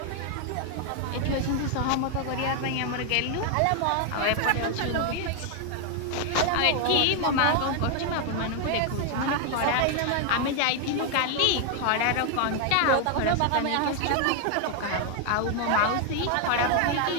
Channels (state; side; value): different; both; correlation 0.00